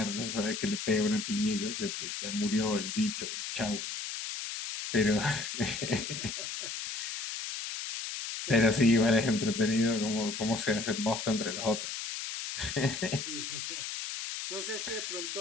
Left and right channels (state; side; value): noise; left; hiss, 5 dB below the sound